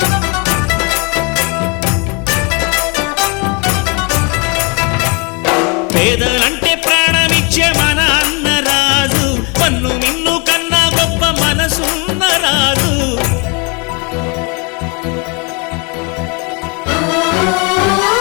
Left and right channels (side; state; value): right; quieter; 32.1 dB